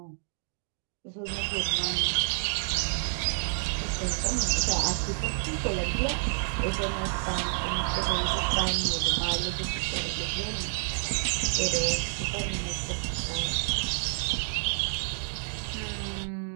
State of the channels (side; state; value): left; silent; digital silence